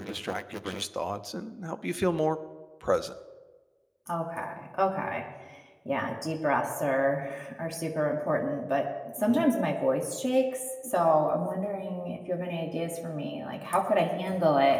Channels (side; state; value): both; identical; correlation 1.00